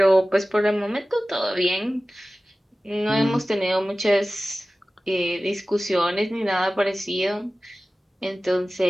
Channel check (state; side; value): normal; both; correlation 0.96